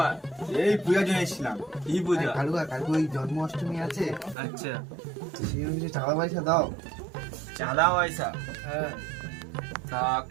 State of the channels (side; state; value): left; drops out; at 4.4 s